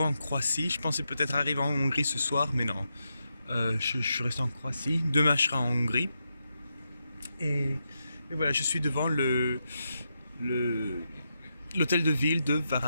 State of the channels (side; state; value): both; inverted; correlation -0.85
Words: en Croatie. Je pensais peut-être arriver en Hongrie ce soir, mais non. Je suis resté en Croatie. Demain je serai en Hongrie. Et voilà, je suis devant l'hôtel de ville de